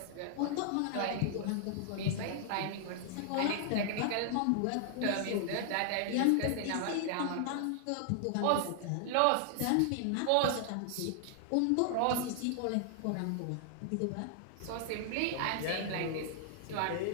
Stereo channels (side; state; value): both; different; correlation 0.00